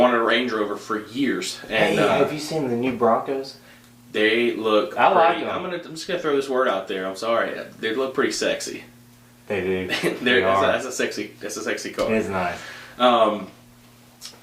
a Range Rover for years. And hey, have you seen the new Broncos? They look. I like pretty, them. I'm just gonna throw this word out there. I'm sorry. They look pretty sexy. They do. That's a sexy car. It is nice.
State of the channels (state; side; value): identical; both; correlation 1.00